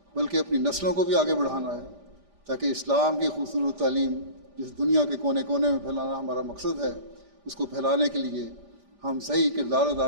بلکہ اپنی نسلوں کو بھی آگے بڑھانا ہے، تاکہ اسلام کی خوبصورت تعلیم جس دنیا کے کونے کونے میں پھیلانا ہمارا مقصد ہے، اس کو پھیلانے کے لیے ہم صحیح کردار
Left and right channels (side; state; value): left; late; 5.0 ms